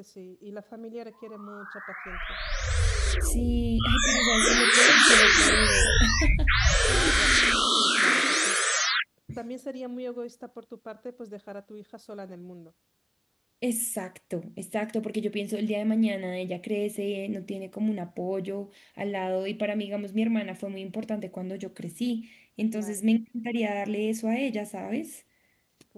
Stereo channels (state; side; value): identical; both; correlation 1.00